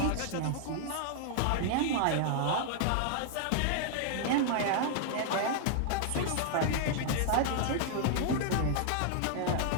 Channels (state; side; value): different; both; correlation -0.01